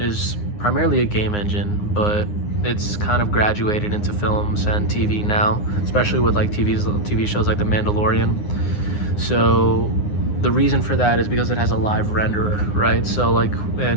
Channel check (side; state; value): right; late; 9.7 ms